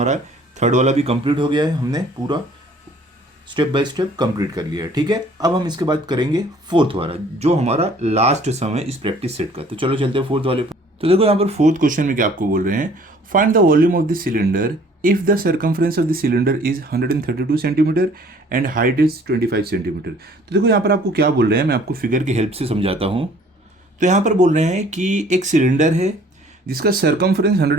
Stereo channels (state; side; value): normal; both; correlation 0.55